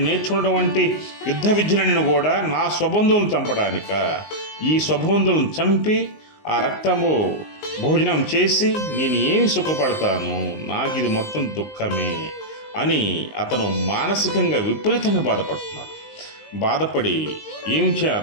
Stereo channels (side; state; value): right; late; 19 ms